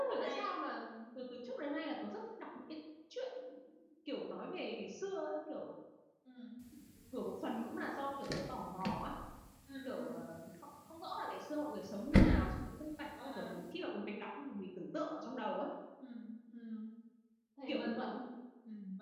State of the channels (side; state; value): both; identical; correlation 1.00